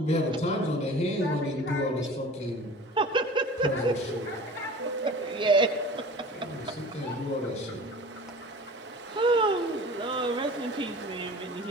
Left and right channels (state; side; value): normal; both; correlation 0.40